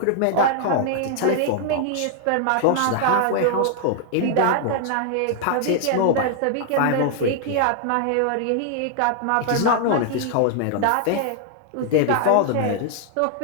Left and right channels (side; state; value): both; different; correlation 0.00